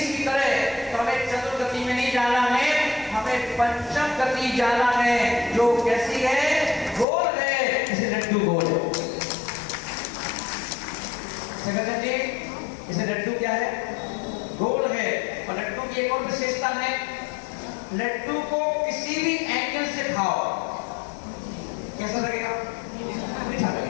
की तरह, तो हमें चतुर्गति में नहीं जाना है, हमें पंचम गति जाना है, जो कैसी है, गोल है, इसे लड्डू गोल है। जी इसे लड्डू क्या है, गोल है। और लड्डू की एक और विशेषता है, लड्डू को किसी भी एंगल से खाओ कैसा लगेगा, मीठा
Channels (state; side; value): drops out; right; at 7.1 s